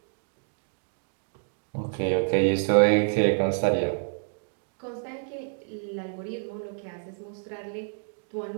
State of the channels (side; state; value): left; silent; digital silence